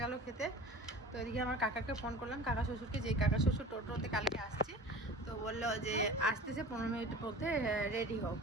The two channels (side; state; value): both; normal; correlation 0.39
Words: গেল খেতে। তো এদিকে আমার কাকাকে ফোন করলাম, কাকা শ্বশুরকে, যে কাকা শ্বশুর টোটোতে কালকে আসছে, তো বললো যে আসতেছে 15 মিনিটের মধ্যে রেডি হোক।